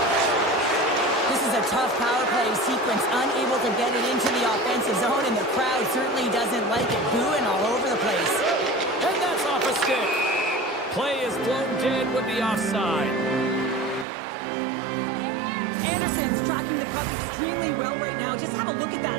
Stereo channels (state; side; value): drops out; left; at 14.1 s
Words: This is a tough power play sequence, unable to get it into the offensive zone, and the crowd certainly doesn't like it, booing all over the place. And that's off a stick. Play is blown dead with the offside. Anderson's tracking the puck extremely well right now. Just have a look at that